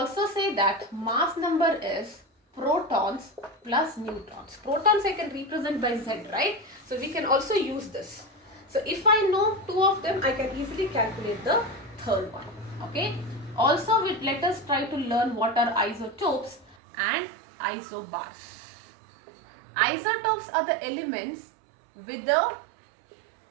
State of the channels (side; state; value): left; drops out; at 16.8 s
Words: say that mass number is protons plus neutrons. Protons I can represent by Z, right? So we can also use this. So if I know 2 of them, I can easily calculate the third one. Okay. Also, let us try to learn what are isotopes and isobars. Isotopes are the elements with the